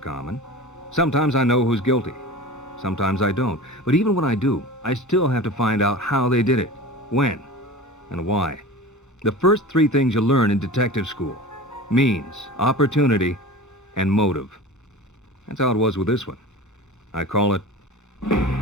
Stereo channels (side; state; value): both; normal; correlation 0.34